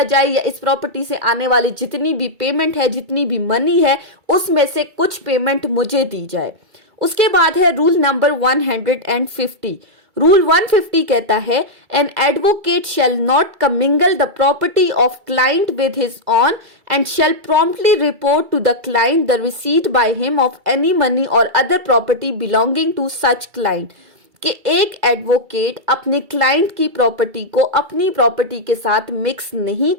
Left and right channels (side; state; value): left; late; 2.3 ms